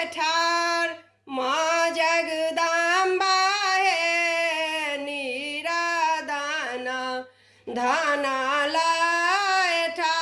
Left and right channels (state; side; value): identical; both; correlation 1.00